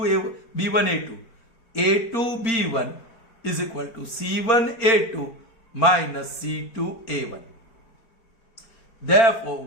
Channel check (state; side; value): late; right; 4.4 ms